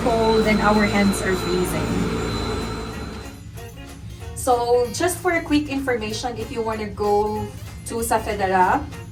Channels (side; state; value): both; identical; correlation 1.00